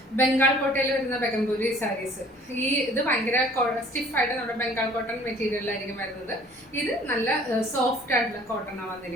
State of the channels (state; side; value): normal; both; correlation 0.53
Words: ബംഗാൾ കോട്ടയിൽ വരുന്ന ബെഗംപൂരി സാരീസ്. ഇത് ഭയങ്കര സ്റ്റിഫായിട്ട് നമ്മുടെ ബംഗാൾ കോട്ടൺ മെറ്റീരിയലായിരിക്കും വരുന്നത്. ഇത് നല്ല സോഫ്റ്റ് ആയിട്ടുള്ള കോട്ടണാണ്